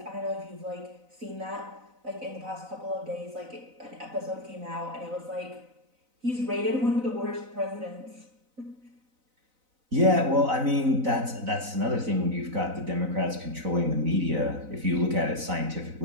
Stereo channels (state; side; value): late; left; 4.0 ms